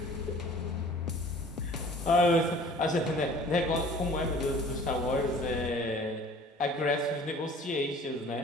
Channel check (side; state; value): both; normal; correlation 0.48